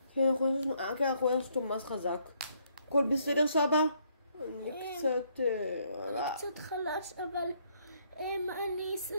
כן, אנחנו הנסנו אותו ממש חזק. הכל בסדר, סבא? אני קצת חלש, אבל אני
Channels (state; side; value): inverted; both; correlation -0.70